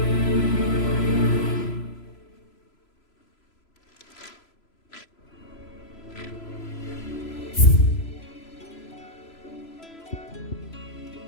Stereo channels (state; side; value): late; right; 3.0 ms